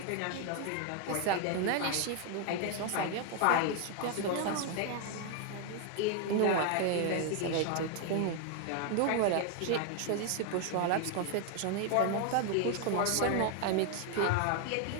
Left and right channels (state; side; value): different; both; correlation 0.01